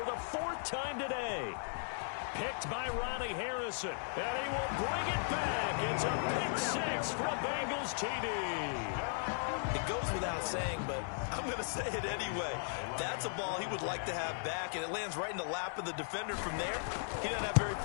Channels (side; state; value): right; silent; digital silence